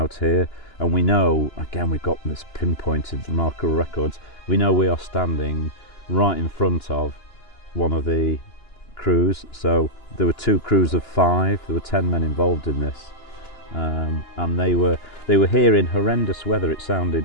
here, and we know, again, we've got this pinpointed remarkable records, we know we are standing right in front of one of the crews. So there were 2 crews of 5, there were 10 men involved in this, and they were here in horrendous weather. It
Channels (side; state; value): right; late; 2.9 ms